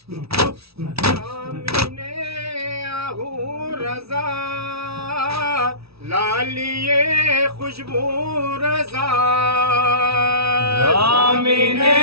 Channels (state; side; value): late; left; 0.77 ms